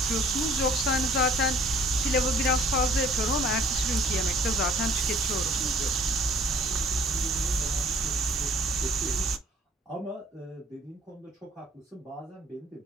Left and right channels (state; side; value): normal; both; correlation 0.55